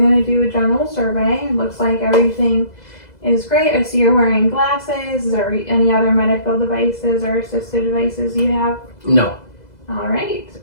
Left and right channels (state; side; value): late; right; 2.0 ms